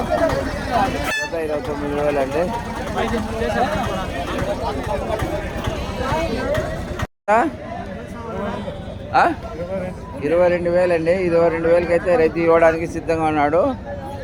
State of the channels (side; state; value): both; identical; correlation 1.00